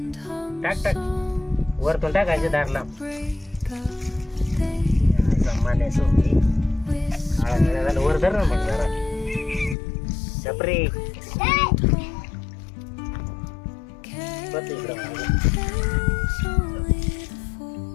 टाक टाक वरतून टाकायचे दारला. मन्या सोडली आळा झालं वर धर ना मग जरा छपरी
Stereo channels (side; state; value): right; drops out; at 9.8 s